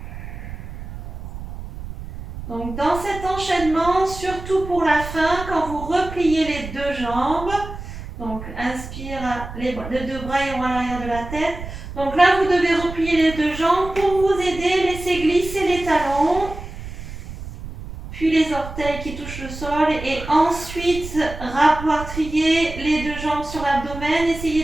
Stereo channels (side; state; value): right; noise; rumble, 11 dB below the sound